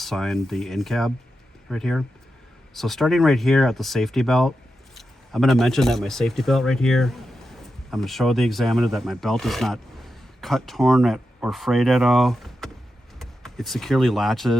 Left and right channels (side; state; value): both; normal; correlation 0.89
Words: the in cab right here. So starting right here at the safety belt, I'm going to mention that my safety belt right here, I'm going to show the examiner that my belt is not cut, torn, or frayed at all. It securely